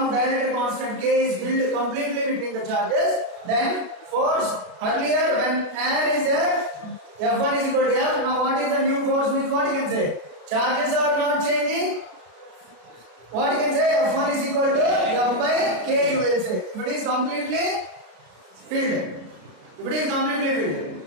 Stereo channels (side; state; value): left; late; 33 ms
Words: dielectric constant K is filled completely between the charges, then force earlier when air is there, F1 is equal to F. Now what is the new force means what you can say? Charges are not changing, What you can say? F1 is equal to F by K, you will say. If it is completely filled. If it is completely